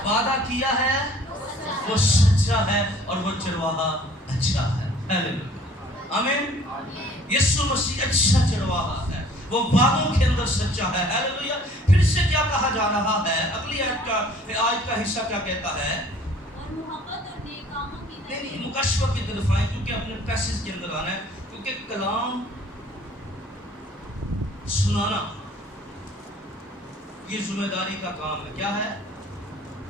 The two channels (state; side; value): normal; both; correlation 0.54